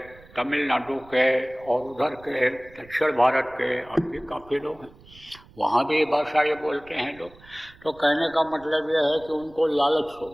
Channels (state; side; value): noise; right; rumble, 24 dB below the sound